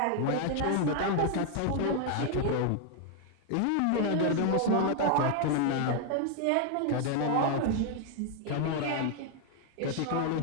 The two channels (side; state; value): both; different; correlation 0.00